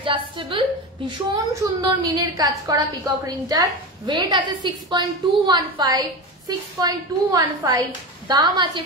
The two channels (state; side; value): normal; both; correlation 0.23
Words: ভীষণ সুন্দর মিনের কাজ করা পিকক রিংটার। ওয়েট আছে 6.215, 6.215। দাম আছে